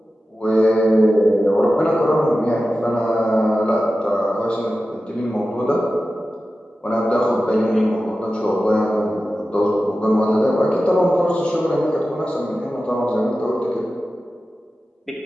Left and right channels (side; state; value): both; normal; correlation 0.94